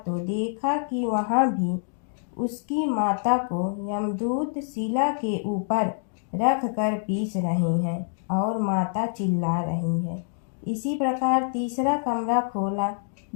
देखा कि वहां भी उसकी माता को यमदूत शिला के ऊपर रख कर पीस रहे हैं और माता चिल्ला रही है। इसी प्रकार तीसरा कमरा खोला,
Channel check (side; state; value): right; silent; digital silence